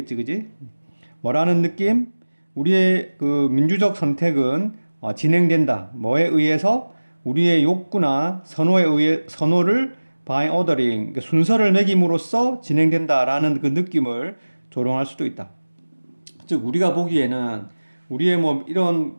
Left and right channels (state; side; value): inverted; both; correlation -1.00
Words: 그지? 뭐라는 느낌? 우리의 그 민주적 선택은 진행된다. 뭐에 의해서? 우리의 욕구나 선호를 by ordering, 그러니까 순서를 매김으로써 진행된다라는 그 느낌을 조롱할 수도 있다. 즉 우리가 보기에는 우리의 뭐 이런